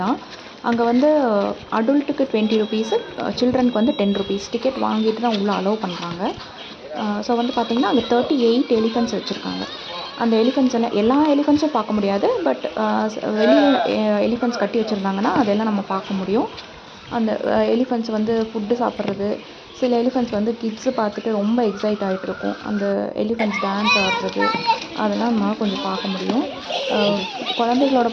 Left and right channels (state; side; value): identical; both; correlation 1.00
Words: தான். அங்கே வந்து அடல்ட்டுக்கு 20 rupees, சில்ட்ரனுக்கு வந்து 10 rupees டிக்கெட் வாங்கிட்டு தான் உள்ளே அலோவ் பண்ணுறாங்க. ஸோ வந்து பார்த்திங்கன்னா அங்கே 38 எலிஃபெண்ட்ஸ் வச்சுருக்காங்க. அந்த எலிஃபெண்ட்ஸ் எல்லாம் எல்லா எலிஃபெண்ட்ஸும் பார்க்க முடியாது. பட் வெளியே எலிஃபெண்ட்ஸ் கட்டி வச்சுருந்தாங்கன்னா அதெல்லாம் நம்ம பார்க்க முடியும். அந்த எலிஃபெண்ட்ஸ் வந்து ஃபுட்டு சாப்பிட்றது, சில எலிஃபெண்ட்ஸ் வந்து கிட்ஸு பார்த்துட்டு ரொம்ப எக்ஸைட் ஆகிட்ருக்கும். அந்த எலிஃபெண்ட்ஸ் டான்ஸ் ஆடுறது அதெல்லாம் நம்மளால் கொஞ்சம் பார்க்க முடியும். குழந்தைகளோட